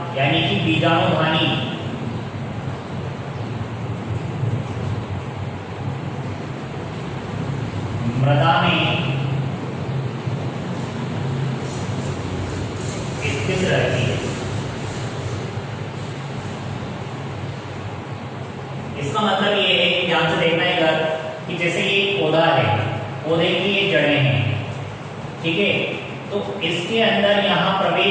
यानी कि बीजाणुधानी मृदा में स्थित रहती है। इसका मतलब ये है कि ध्यान से देखना है इधर, कि जैसे ये पौधा है, पौधे की ये जड़ें हैं, ठीक है, तो इसके अंदर यहाँ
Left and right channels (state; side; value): identical; both; correlation 1.00